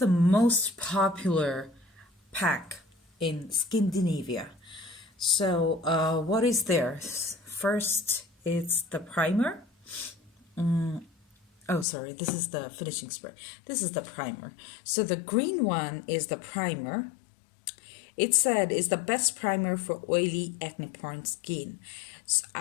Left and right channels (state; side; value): drops out; right; at 11.9 s